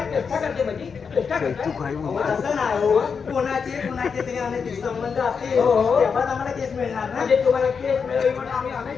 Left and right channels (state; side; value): quieter; right; 5.9 dB